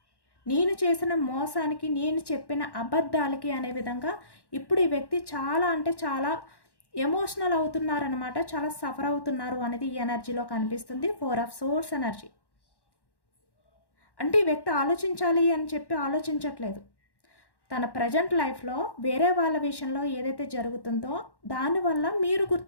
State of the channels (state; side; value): late; right; 1.1 ms